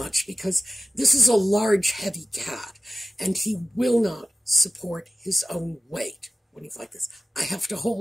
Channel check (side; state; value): both; normal; correlation 0.96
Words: because this is a large, heavy cat, and he will not support his own weight when he's like this. I have to